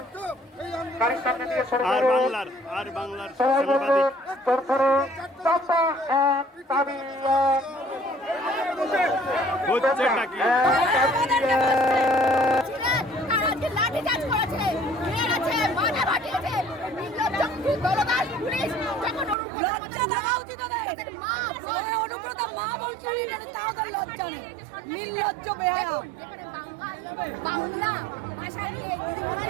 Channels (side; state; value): left; drops out; at 19.4 s